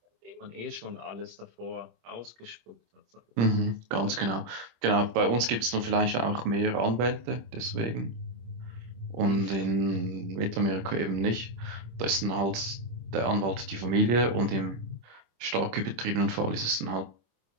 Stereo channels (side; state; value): left; late; 26 ms